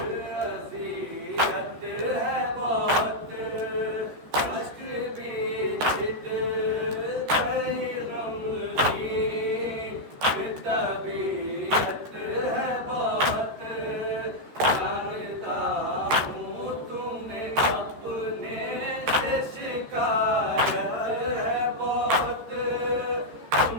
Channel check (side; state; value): left; late; 13 ms